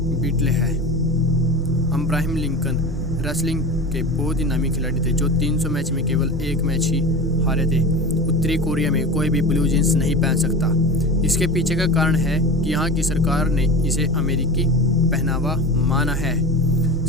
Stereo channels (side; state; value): both; normal; correlation 0.30